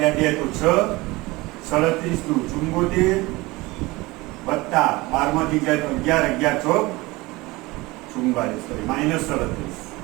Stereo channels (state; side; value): quieter; left; 21.9 dB